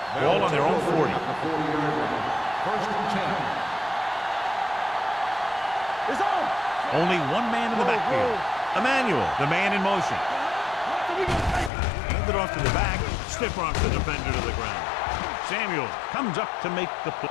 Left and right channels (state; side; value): drops out; right; at 11.7 s